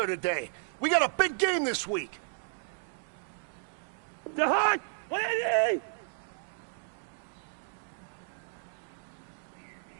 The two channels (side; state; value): left; silent; digital silence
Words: today. We got a big game this week. The Hunt! 180!